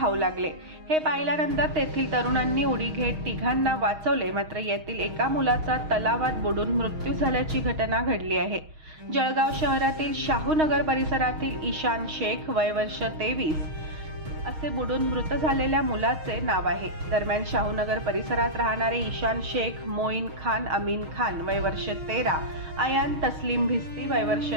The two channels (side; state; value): left; late; 6.4 ms